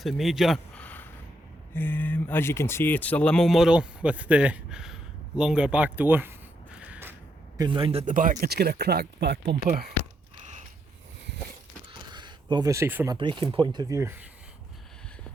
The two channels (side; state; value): both; normal; correlation 0.78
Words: major. As you can see, it's a limo model with the longer back door. Going round at the back, it's got a cracked back bumper. But obviously from a braking point of view,